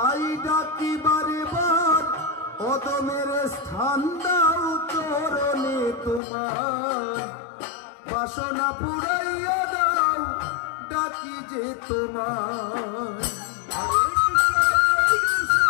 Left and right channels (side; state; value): right; drops out; at 6.2 s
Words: ডাকি বারে বার অধমের স্থান দাও চরণে তোমার বাসনা পুরাইয়া দাও ডাকি যে তোমার